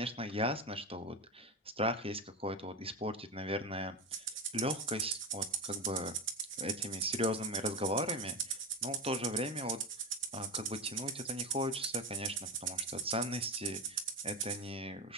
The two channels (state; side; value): normal; both; correlation 0.17